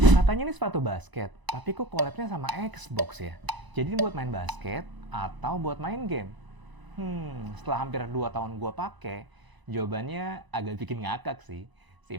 Katanya ini sepatu basket, tapi kok collab-nya sama Xbox ya? Jadi ini buat main basket atau buat main game? Setelah hampir 2 tahun gue pakai, jawabannya agak bikin ngakak sih.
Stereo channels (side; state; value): left; late; 1.0 ms